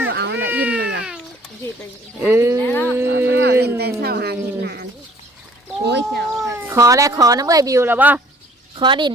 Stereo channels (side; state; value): both; normal; correlation 0.56